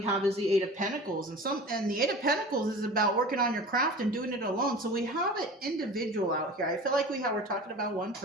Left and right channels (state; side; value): normal; both; correlation 0.38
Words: have is the 8 of Pentacles, and the 8 of Pentacles is about working on your craft and doing it alone. So we have an individual out here. I feel like we're talking about one